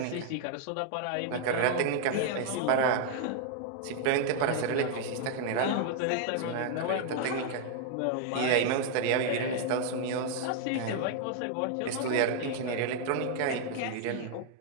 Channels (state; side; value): different; both; correlation 0.00